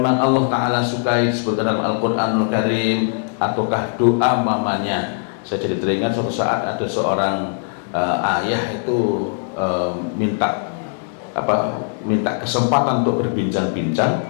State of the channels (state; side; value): silent; right; digital silence